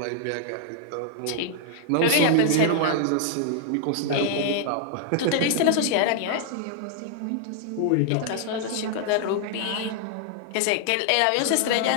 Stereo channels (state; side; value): different; both; correlation -0.01